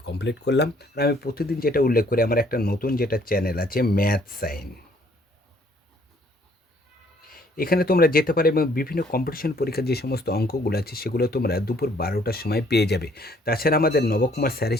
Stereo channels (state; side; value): normal; both; correlation 0.62